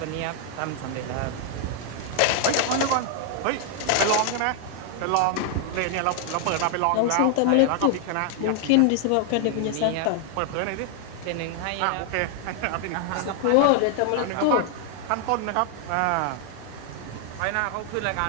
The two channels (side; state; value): both; different; correlation 0.00